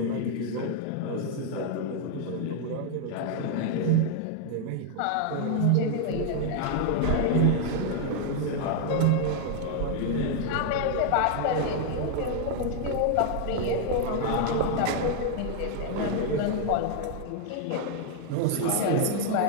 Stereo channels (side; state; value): both; different; correlation 0.00